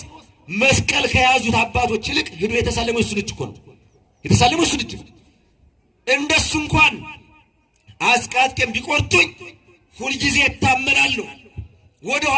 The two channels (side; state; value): both; identical; correlation 1.00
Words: መስቀል ከያዙት አባቶች ይልቅ ሄዶ የተሳለመው እሱን እጅ እኮ ነው። የተሳለመው እሱን እጅ እንደሱ እንኳን አስቃጥቄም ቢቆርጡኝ ሁልጊዜ እታመናለሁ፣ ወደ